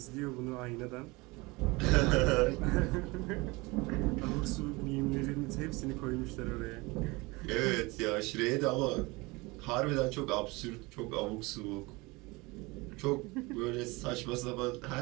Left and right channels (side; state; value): left; quieter; 24.2 dB